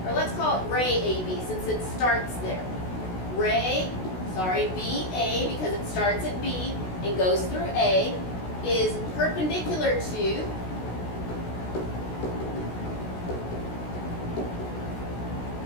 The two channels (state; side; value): late; right; 16 ms